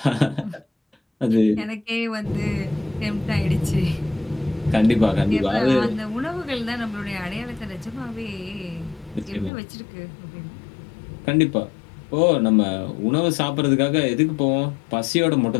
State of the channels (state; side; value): drops out; right; at 9.5 s